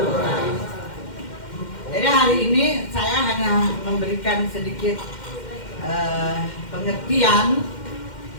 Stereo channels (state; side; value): late; right; 2.1 ms